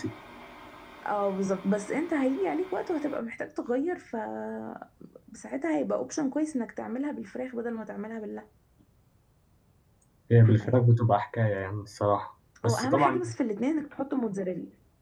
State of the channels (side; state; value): both; identical; correlation 1.00